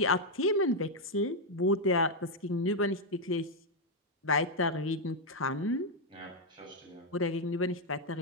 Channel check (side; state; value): both; normal; correlation 0.00